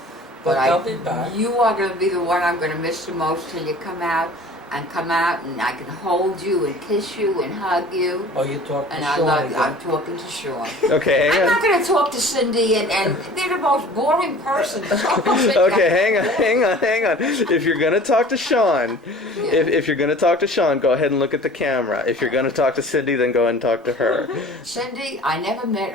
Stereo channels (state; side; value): normal; both; correlation 0.45